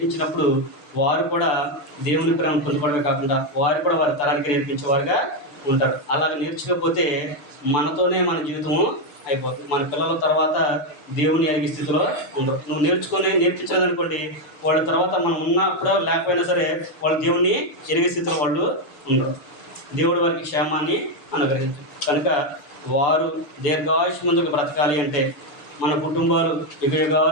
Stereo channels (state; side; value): late; right; 6.9 ms